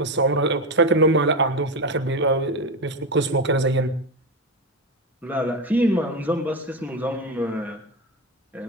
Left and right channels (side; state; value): both; normal; correlation 0.16